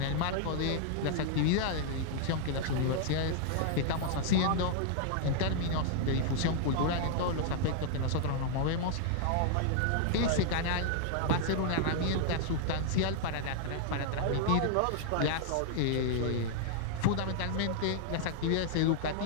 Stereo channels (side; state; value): both; different; correlation -0.01